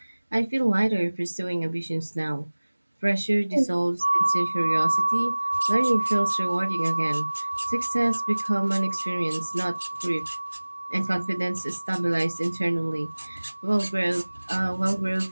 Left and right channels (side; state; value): both; inverted; correlation -1.00